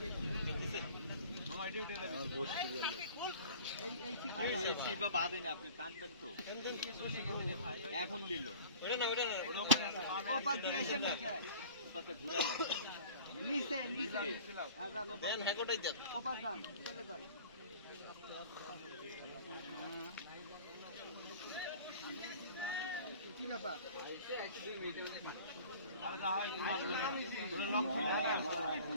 এখন দিল কি ব্যাপার?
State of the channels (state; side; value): inverted; both; correlation -0.44